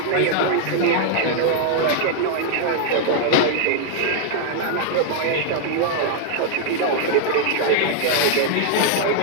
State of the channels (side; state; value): both; different; correlation -0.01